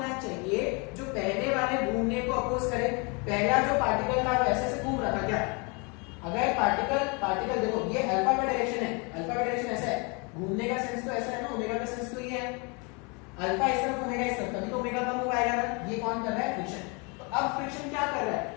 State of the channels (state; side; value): quieter; right; 31.5 dB